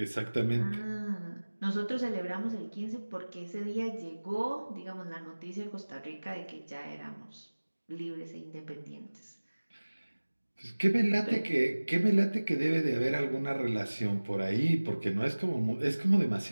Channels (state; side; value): inverted; both; correlation -1.00